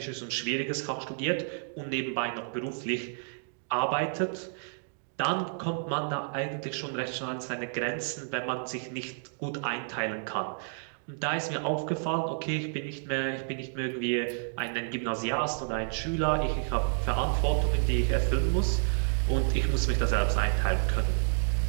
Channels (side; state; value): left; silent; digital silence